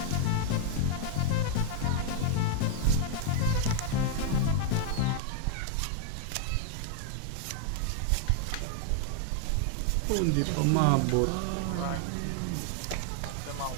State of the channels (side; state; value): both; different; correlation 0.00